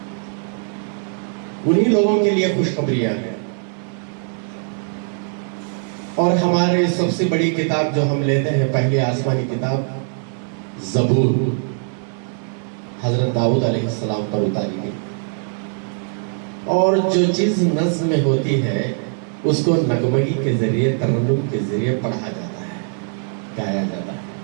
انہی لوگوں کے لیے خوشخبریاں ہیں. اور ہمارے سب سے بڑی کتاب جو ہم لیتے ہیں، پہلی آسمانی کتاب زبور، حضرت داؤد علیہ السلام پر اتاری گئی. اور جو چیز نظم میں ہوتی ہے اس کو نغمگی کے ذریعے، ترنم کے ذریعے پڑھا جاتا ہے، گایا جاتا ہے.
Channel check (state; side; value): silent; left; 56 dB below the other